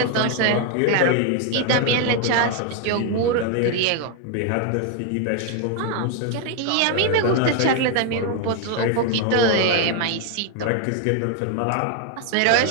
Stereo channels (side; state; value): both; different; correlation 0.01